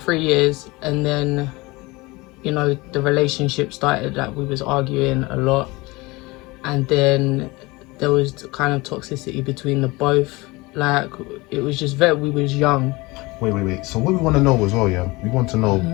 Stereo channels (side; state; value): right; quieter; 23.2 dB